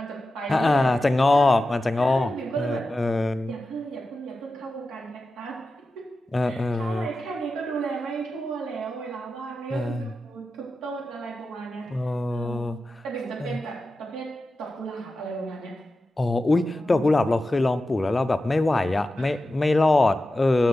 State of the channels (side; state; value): both; normal; correlation 0.92